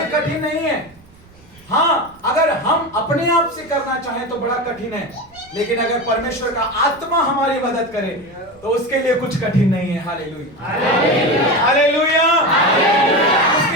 कठिन नहीं है। हाँ, अगर हम अपने आप से करना चाहें तो बड़ा कठिन है, लेकिन अगर परमेश्वर का आत्मा हमारी मदद करे तो उसके लिए कुछ कठिन नहीं है। Hallelujah, hallelujah.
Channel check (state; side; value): noise; right; rumble, 27 dB below the sound